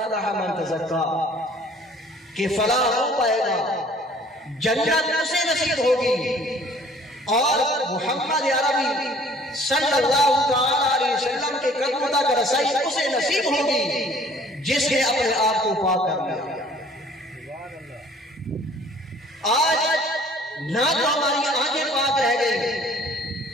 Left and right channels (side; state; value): both; normal; correlation 0.54